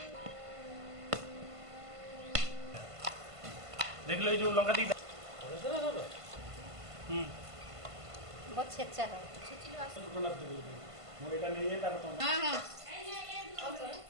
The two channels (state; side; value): late; left; 1.5 ms